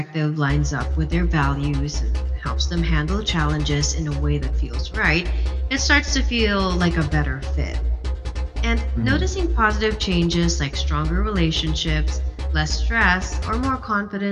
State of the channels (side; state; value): both; identical; correlation 1.00